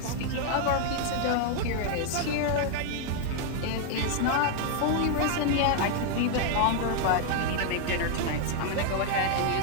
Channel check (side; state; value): both; different; correlation 0.00